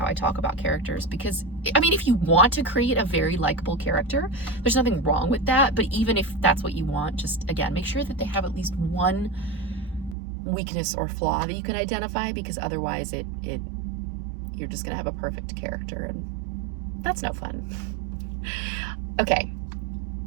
I talk about characters, because I mean, if you want to create a very likable character, there's nothing wrong with that. But even if that's what you want, just again, make sure that they have at least one weakness or flaw that you can identify, because otherwise you're just gonna have a perfect character, and that's no fun. Okay,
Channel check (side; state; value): left; drops out; at 10.2 s